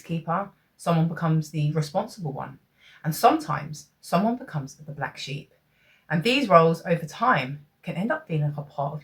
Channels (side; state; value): both; identical; correlation 1.00